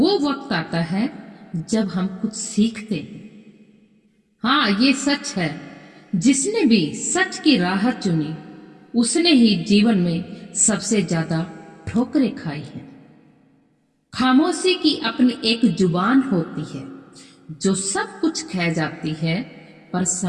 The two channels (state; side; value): identical; both; correlation 1.00